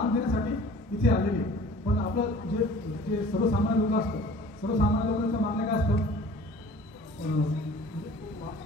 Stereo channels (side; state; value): both; normal; correlation 0.47